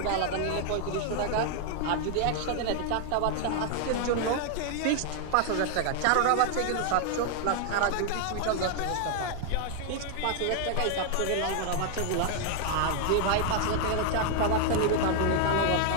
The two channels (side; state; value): both; different; correlation 0.00